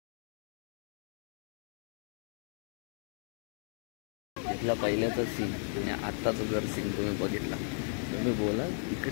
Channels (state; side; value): silent; right; 54 dB below the other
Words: इथला पहिल्याचा सीन आणि आत्ताचा जर सीन तुम्ही बघितला तुम्ही बोलाल